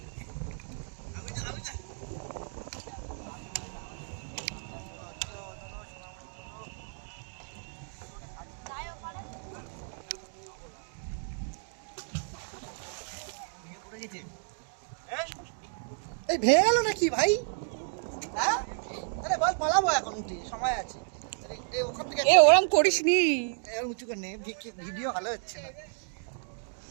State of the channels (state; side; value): silent; left; 57 dB below the other